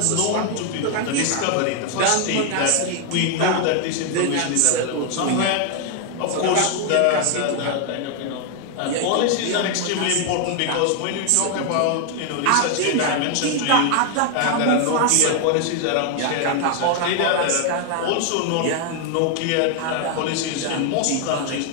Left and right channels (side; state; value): both; different; correlation 0.00